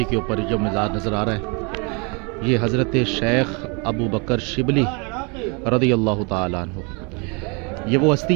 کے اوپر جو مزار نظر آ رہا ہے یہ حضرت شیخ ابو بکر شبلی رضی اللہ تعالیٰ عنہ۔ یہ وہ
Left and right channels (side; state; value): left; quieter; 32.4 dB